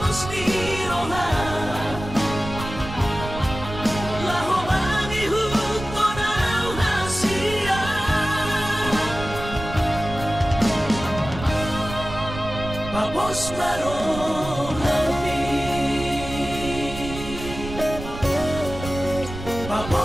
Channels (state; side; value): noise; right; rumble, 10 dB below the sound